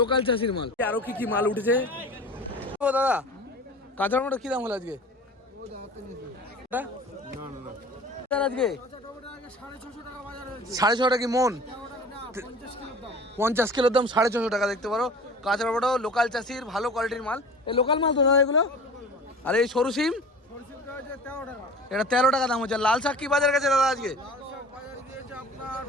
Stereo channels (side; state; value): both; normal; correlation 0.40